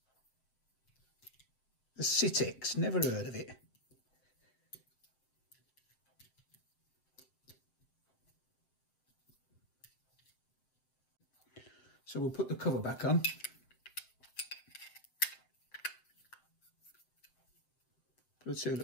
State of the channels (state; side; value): late; right; 7.7 ms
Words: The Sitex, never heard of it. So we'll put the cover back on. Put the 2